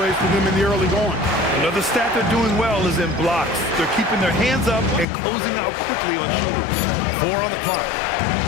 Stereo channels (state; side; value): drops out; right; at 5.1 s